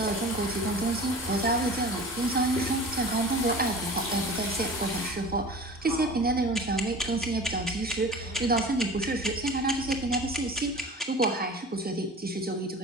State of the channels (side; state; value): both; normal; correlation 0.38